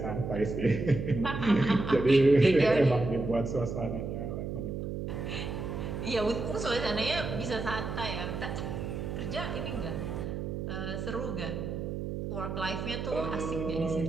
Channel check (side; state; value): right; noise; hum, 4 dB below the sound